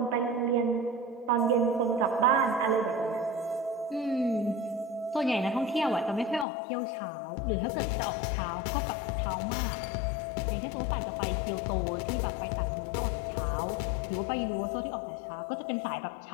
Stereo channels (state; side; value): drops out; right; at 6.5 s